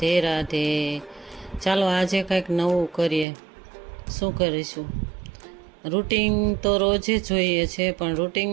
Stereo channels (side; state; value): left; drops out; at 3.2 s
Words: રાધે. ચાલો આજે કંઈક નવું કરીએ. શું કરીશું? રૂટિન તો રોજે જોઈએ છે, પણ